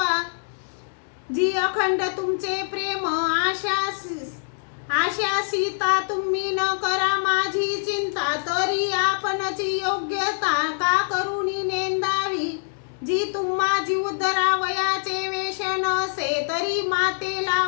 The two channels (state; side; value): silent; right; digital silence